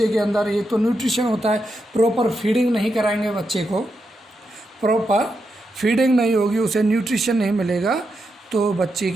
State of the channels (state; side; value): normal; both; correlation 0.85